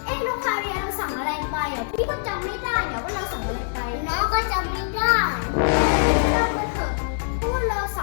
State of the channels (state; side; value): silent; right; digital silence